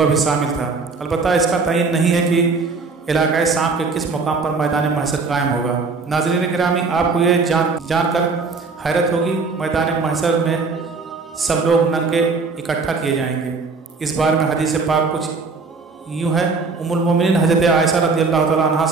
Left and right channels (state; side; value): quieter; left; 4.4 dB